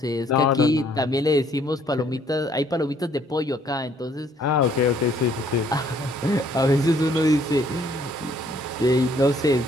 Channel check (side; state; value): both; normal; correlation 0.64